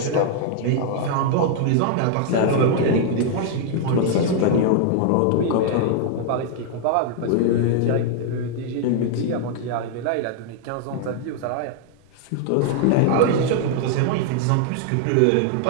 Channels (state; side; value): different; both; correlation 0.00